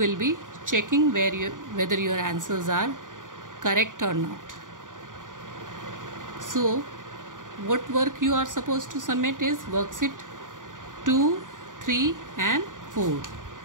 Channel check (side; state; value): left; late; 0.88 ms